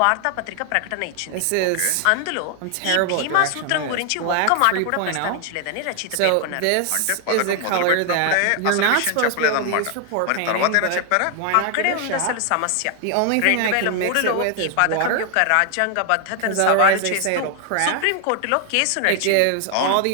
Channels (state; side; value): different; both; correlation 0.00